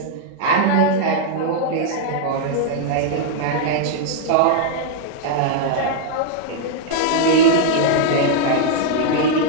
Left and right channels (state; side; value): different; both; correlation -0.01